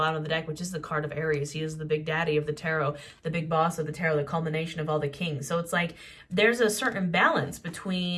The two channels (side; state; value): both; identical; correlation 1.00